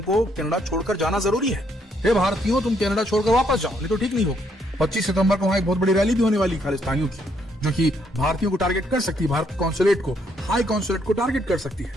कनाडा छोड़कर जाना जरूरी है, हे भारतीयों तुम कनाडा छोड़कर वापस जाओ, नहीं तो ठीक नहीं होगा। 25 सितंबर को वहां एक बहुत बड़ी रैली भी होने वाली खालिस्तानियों की, जो कि भारतीयों को टारगेट कर सकती है, भारत कॉन्सुलेट को, हाई कॉन्सुलेट को टारगेट कर सकती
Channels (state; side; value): normal; both; correlation 0.72